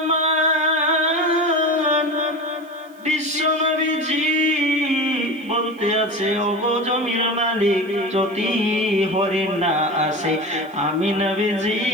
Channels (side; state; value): right; noise; hiss, 29 dB below the sound